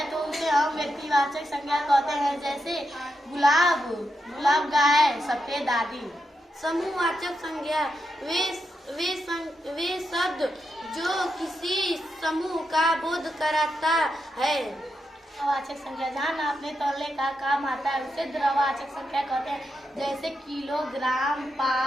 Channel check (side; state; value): both; normal; correlation 0.85